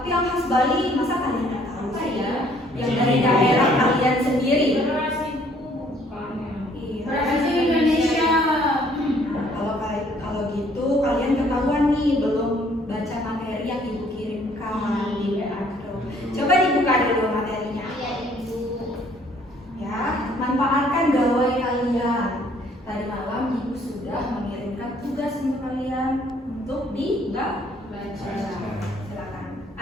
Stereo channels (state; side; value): normal; both; correlation 0.62